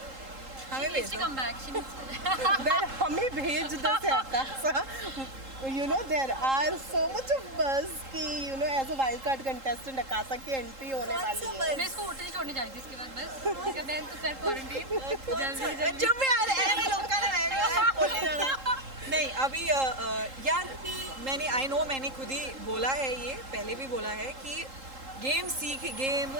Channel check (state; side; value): late; left; 3.8 ms